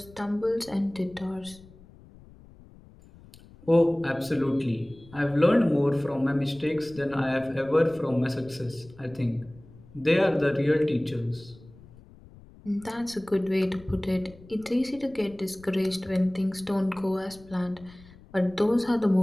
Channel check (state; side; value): noise; left; rumble, 22 dB below the sound